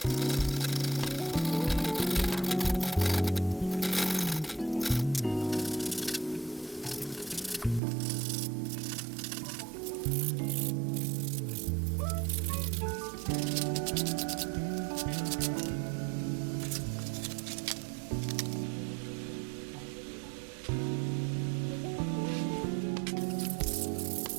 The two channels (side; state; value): left; drops out; at 7.8 s